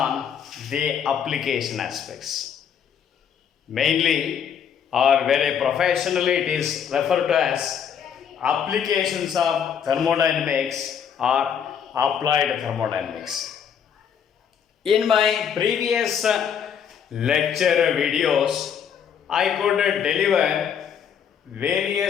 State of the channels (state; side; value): quieter; right; 8.0 dB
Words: the application aspects. Mainly, or very professionally, it is referred to as applications of thermodynamics or applied thermodynamics. In my previous lecture videos, I could deliver